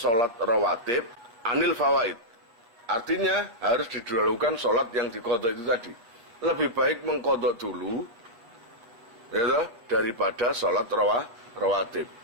rawatib anil fawaid. Artinya harus didahulukan salat yang diqadha itu tadi. Lebih baik mengqadha dulu ya, daripada salat rawatib.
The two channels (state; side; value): late; left; 8.6 ms